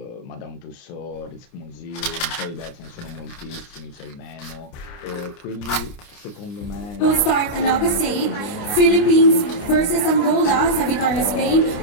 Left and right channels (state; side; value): late; right; 28 ms